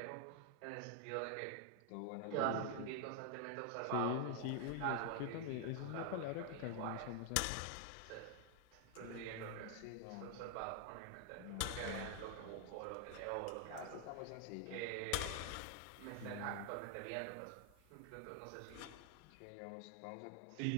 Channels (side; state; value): both; different; correlation 0.00